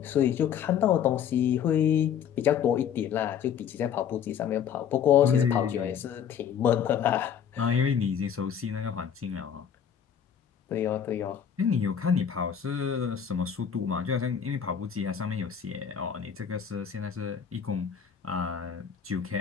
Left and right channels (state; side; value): quieter; right; 8.2 dB